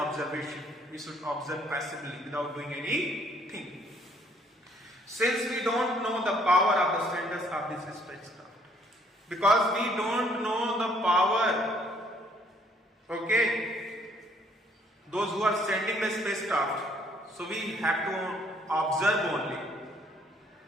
We should observe passively without doing anything. Since we don't know the power of the senders of this spacecraft, because we don't know the power, okay, those who are sending the spacecraft, so we have to observe only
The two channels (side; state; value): both; normal; correlation 0.64